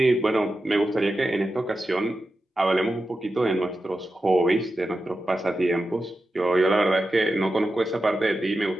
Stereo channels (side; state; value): both; normal; correlation 0.91